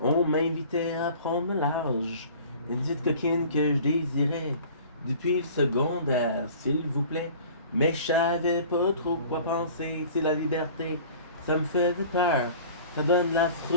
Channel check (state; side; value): inverted; both; correlation -0.46